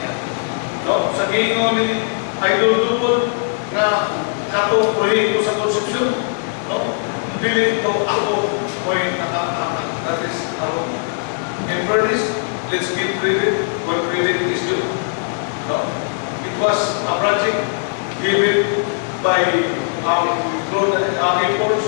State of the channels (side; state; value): right; silent; 66 dB below the other